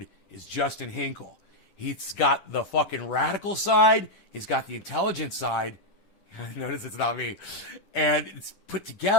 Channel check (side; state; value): right; late; 10 ms